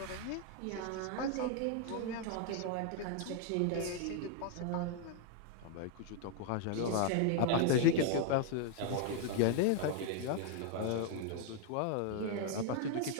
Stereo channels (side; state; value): both; different; correlation 0.00